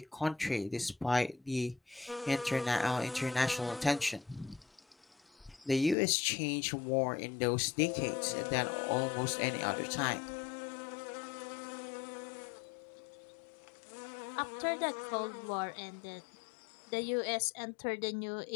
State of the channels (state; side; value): drops out; right; at 6.0 s